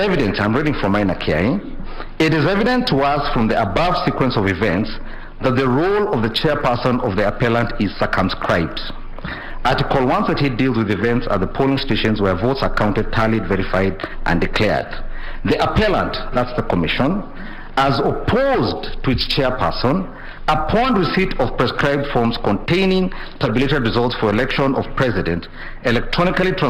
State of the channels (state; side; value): identical; both; correlation 1.00